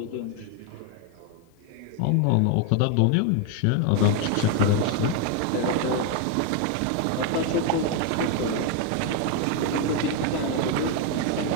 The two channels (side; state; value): both; different; correlation 0.01